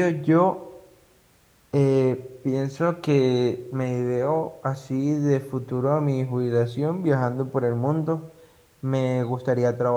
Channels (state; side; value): identical; both; correlation 1.00